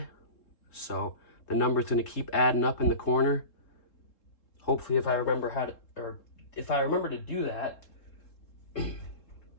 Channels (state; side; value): late; right; 3.7 ms